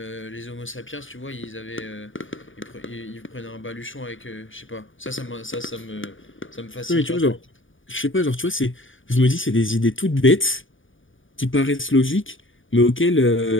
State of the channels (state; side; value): late; right; 0.57 ms